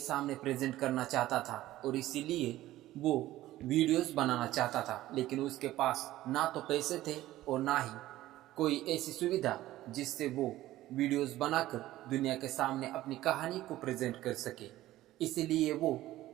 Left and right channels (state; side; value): quieter; left; 15.3 dB